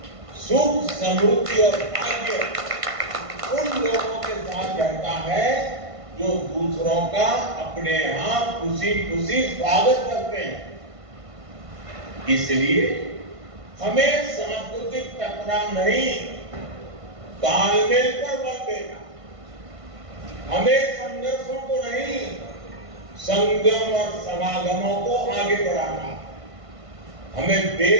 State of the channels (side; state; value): left; late; 1.5 ms